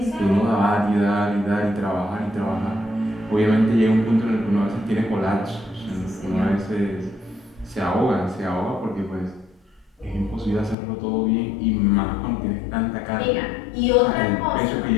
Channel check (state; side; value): drops out; right; at 10.8 s